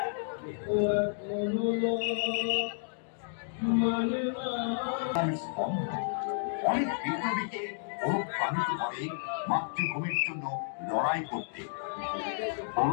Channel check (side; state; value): right; silent; digital silence